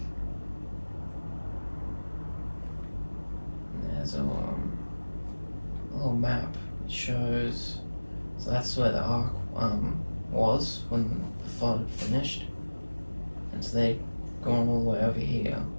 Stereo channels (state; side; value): inverted; both; correlation -1.00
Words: And there's a little map. It shows, so that's where the ark was when the flood finished, and so they'd gone all the way over here.